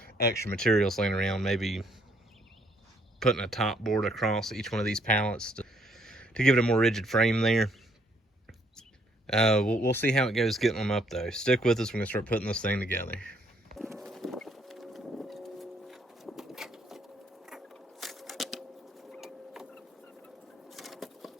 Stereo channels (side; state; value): both; normal; correlation 0.67